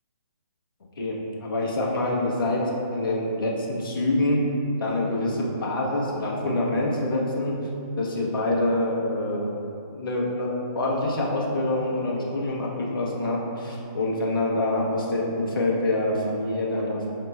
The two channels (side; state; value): both; inverted; correlation -0.57